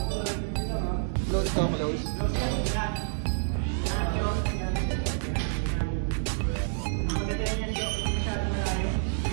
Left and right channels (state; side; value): silent; left; digital silence